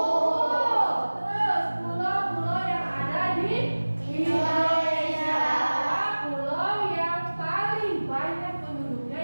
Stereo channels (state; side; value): inverted; both; correlation -1.00